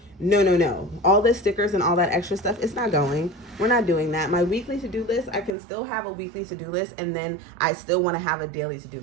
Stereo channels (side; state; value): left; drops out; at 5.5 s